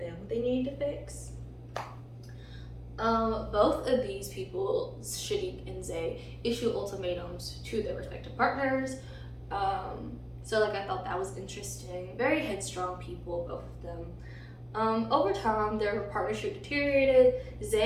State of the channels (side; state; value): both; identical; correlation 1.00